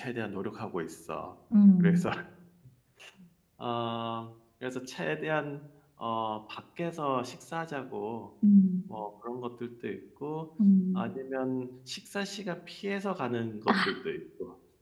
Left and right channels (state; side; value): identical; both; correlation 1.00